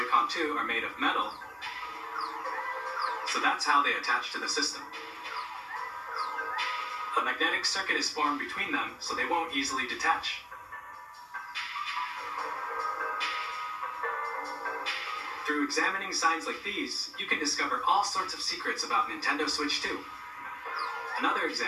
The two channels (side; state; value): both; identical; correlation 1.00